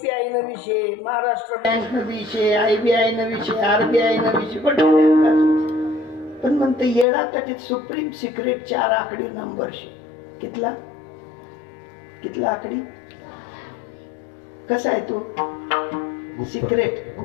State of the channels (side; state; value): right; drops out; at 7.1 s